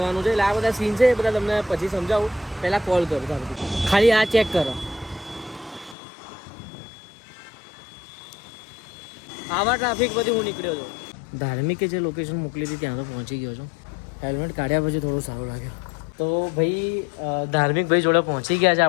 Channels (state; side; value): drops out; right; at 6.0 s